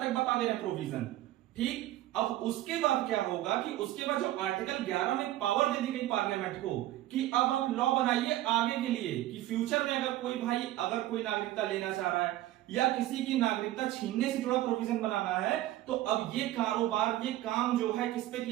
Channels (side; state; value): left; quieter; 14.9 dB